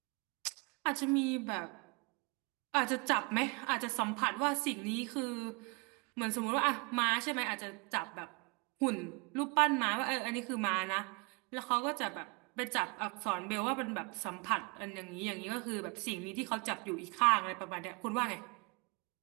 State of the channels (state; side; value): quieter; left; 30.2 dB